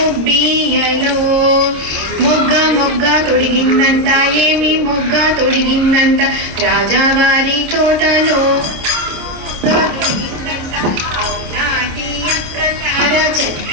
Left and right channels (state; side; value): late; left; 26 ms